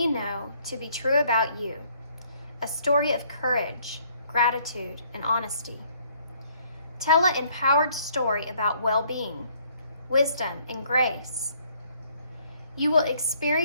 know to be true about you, a story of courage, gratitude, and honesty. Tell an empowered story about well-being, wisdom, and grace. You will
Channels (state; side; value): inverted; both; correlation -0.64